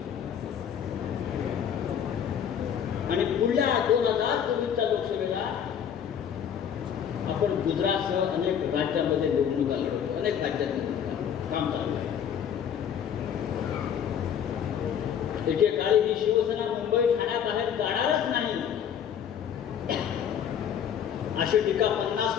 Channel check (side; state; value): right; quieter; 8.6 dB